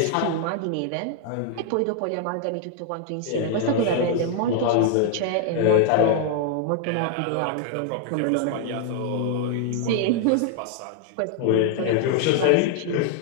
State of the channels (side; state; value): both; different; correlation 0.00